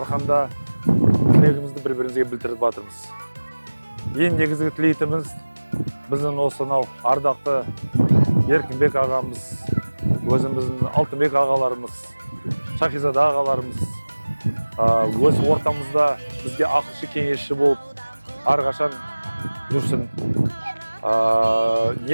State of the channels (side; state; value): both; inverted; correlation -1.00